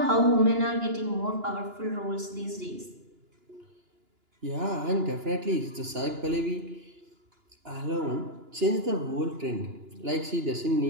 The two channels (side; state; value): left; late; 2.9 ms